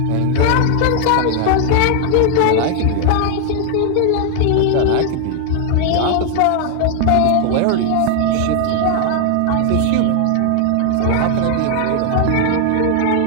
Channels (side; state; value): both; different; correlation 0.00